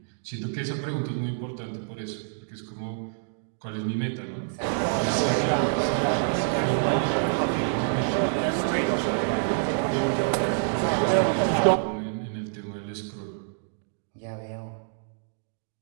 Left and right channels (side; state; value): left; silent; digital silence